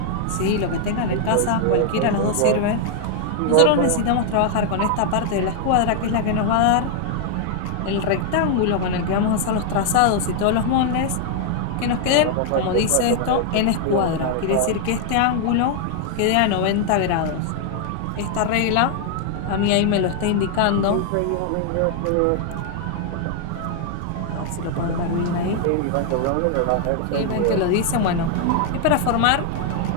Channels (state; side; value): different; both; correlation 0.00